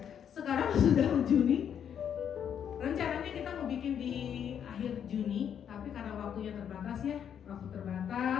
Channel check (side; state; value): right; quieter; 8.6 dB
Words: Sekarang sudah Juni. Rencananya kita mau bikin di akhir Juni, tapi karena waktunya terbatas ya, waktu